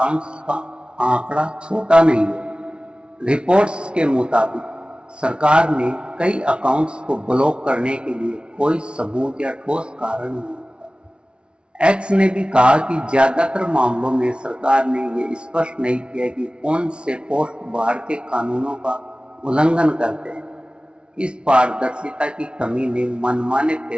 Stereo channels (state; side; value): late; left; 0.057 ms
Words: का आंकड़ा छोटा नहीं है। रिपोर्ट्स के मुताबिक सरकार ने कई अकाउंट्स को ब्लॉक करने के लिए कोई सबूत या ठोस कारण नहीं दिया। एक्स ने भी कहा कि ज्यादातर मामलों में सरकार ने ये स्पष्ट नहीं किया कि कौन से पोस्ट भारतीय कानूनों का उल्लंघन करते हैं। इस पारदर्शिता की कमी ने मनमाने